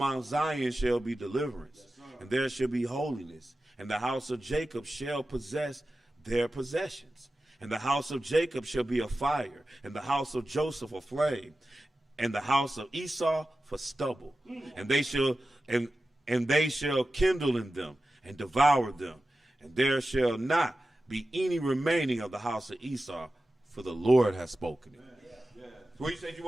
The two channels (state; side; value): normal; both; correlation 0.94